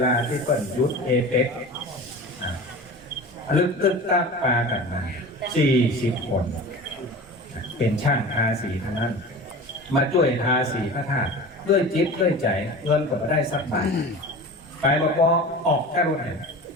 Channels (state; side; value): normal; both; correlation 0.35